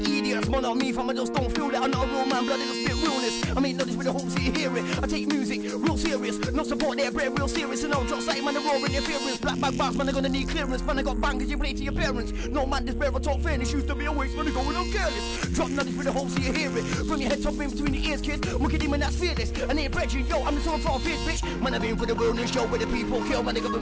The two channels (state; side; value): identical; both; correlation 1.00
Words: idiots. Man on me from I just don't feel it. I'm not a real man, blood, it'll spit realness. I mean, not this with the whole city hear it. I take music real serious, no support there, bread real serious. And I'll drop sight, man, the raw interference. Black bag bars, man, I'm gonna need clearance. Man, I got bangers, you play to your parents. No man, this bear, I talk fairness. Used to be a waste, man, I'm going on careless. Drop nothing with the whole city hear it. From your head top in between the ears, kid. Look at him and that's fearless. I ain't brethren, yo, I'm the sort of bitch, bitch. Man, I've been for the wilderness show where the people kill, man, the